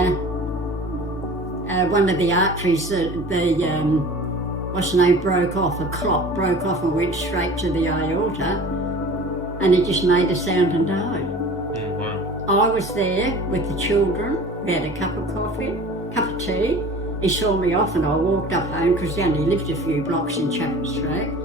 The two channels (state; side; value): normal; both; correlation 0.41